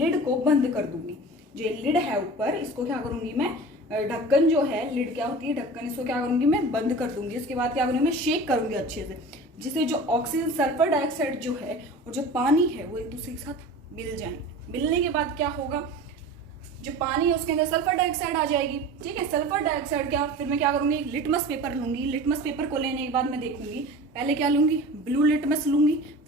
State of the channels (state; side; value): normal; both; correlation 0.36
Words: को बंद कर दूंगी, जो लिड है ऊपर इसको क्या करूँगी मैं ढक्कन जो है लिड क्या होती है ढक्कन, इसको क्या करूंगी मैं बंद कर दूंगी। उसके बाद क्या करूंगी मैं शेक करूंगी अच्छे से, जिससे जो ऑक्सीजन सल्फर डाइऑक्साइड जो है और जो पानी है वो एक दूसरे के साथ मिल जाएंगे। मिलने के बाद क्या होगा जो पानी है उसके अंदर सल्फर डाइऑक्साइड आ जाएगी। ठीक है, सल्फर डाइऑक्साइड क्या फिर मैं क्या करूंगी लिटमस पेपर लूंगी। लिटमस पेपर को लेने के बाद मैं देखूंगी पहले क्या लूंगी ब्लू लिटमस लूंगी,